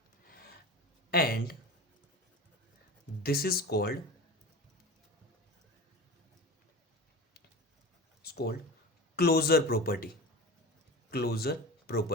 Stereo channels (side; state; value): both; normal; correlation 0.32